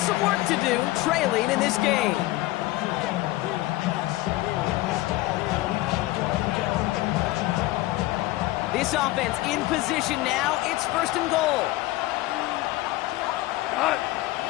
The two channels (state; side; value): quieter; right; 18.4 dB